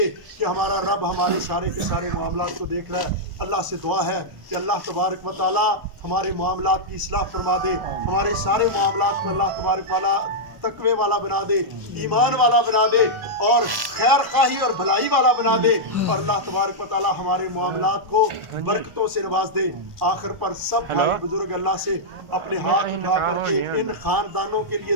کہ ہمارا رب ہمارے سارے کے سارے معاملات کو دیکھ رہا ہے۔ اللہ سے دعا ہے کہ اللہ تبارک و تعالیٰ ہمارے معاملات کی اصلاح فرما دے، ہمارے سارے معاملات کو اللہ تبارک والا تقوی والا بنا دے، ایمان والا بنا دے، اور خیر خواہی اور بھلائی والا بنا دے، اور اللہ تبارک و تعالیٰ ہمارے معاملات کو برکتوں سے نواز دے۔ آخر پر سب بھائی بزرگ اللہ سے اپنے ہاتھ اٹھا کر کے ان خاندانوں کے لیے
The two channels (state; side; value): late; left; 1.0 ms